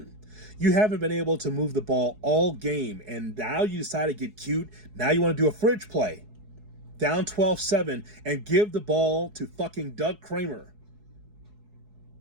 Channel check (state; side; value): late; left; 4.7 ms